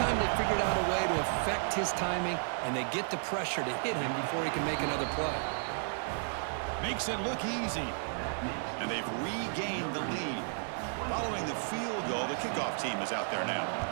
they figured out a way to affect his timing, and they get the pressure to hit him before he can make another play. Makes it look easy. And they've regained the lead. Following the field goal, the kickoff team is out there now.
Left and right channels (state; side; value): silent; left; digital silence